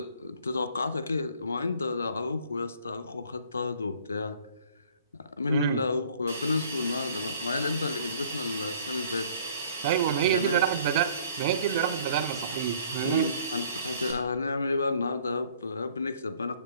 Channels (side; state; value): both; inverted; correlation -0.56